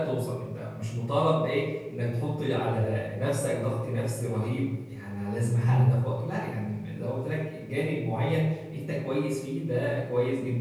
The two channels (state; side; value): identical; both; correlation 1.00